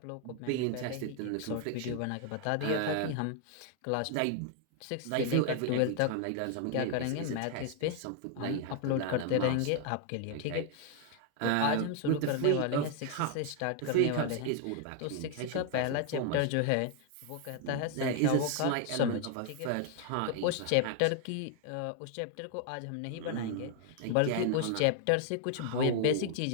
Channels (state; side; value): different; both; correlation 0.00